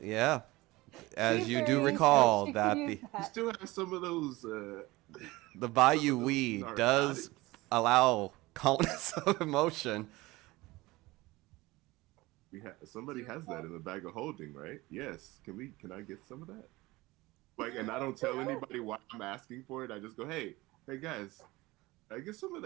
As you do Very recall good. that You the can use You that. still have some of those. the Bayou weed does narcotics. allow calmness of emotion. Somebody has that in the bag of holding, right? Yes. Can I get some of that? Like, and I don't tell anybody why I'm asking for it. I just go, hey guys, can I get some of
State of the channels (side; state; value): left; quieter; 20.5 dB